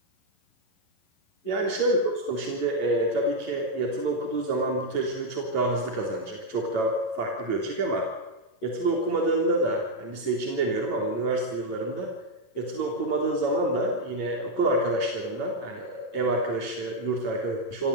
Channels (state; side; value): late; right; 11 ms